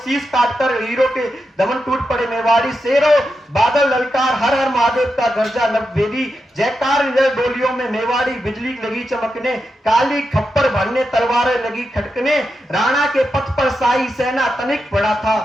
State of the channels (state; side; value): normal; both; correlation 0.87